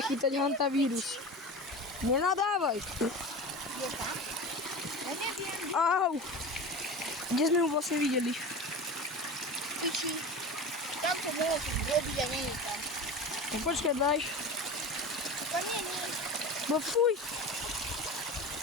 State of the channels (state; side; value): normal; both; correlation 0.30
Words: chytať hantavírus. Nenadávaj. Je tam? Ja neviem. Au. Kde sme ho vlastne videli? Piči. Tam to mohol som robiť a nie je tam. No počkaj, daj. To nie. No fuj.